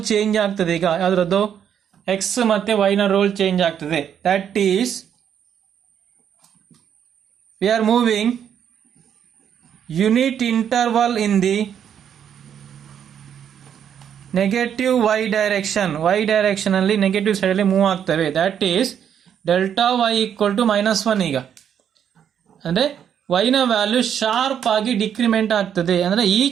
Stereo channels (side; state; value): left; quieter; 8.8 dB